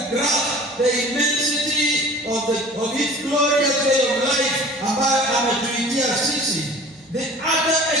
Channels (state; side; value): normal; both; correlation 0.44